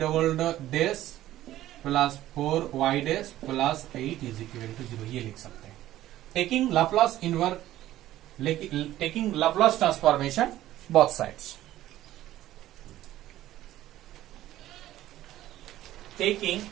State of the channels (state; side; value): quieter; left; 14.1 dB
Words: double dash plus 4y dash plus 8 is equal to 0, ये लिख सकते हैं taking Laplace inverse, taking Laplace transformation both sides, taking